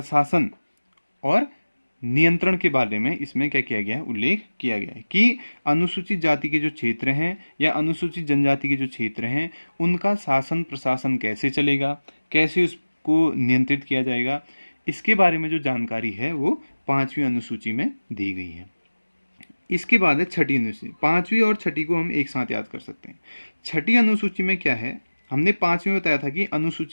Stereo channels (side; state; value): both; inverted; correlation -1.00